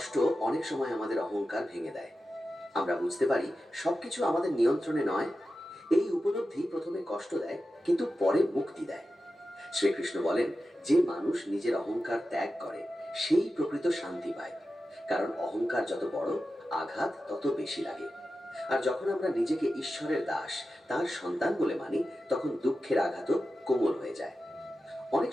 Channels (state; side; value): normal; both; correlation 0.92